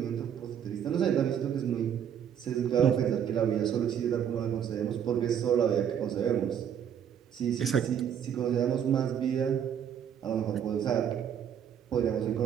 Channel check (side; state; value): left; quieter; 8.9 dB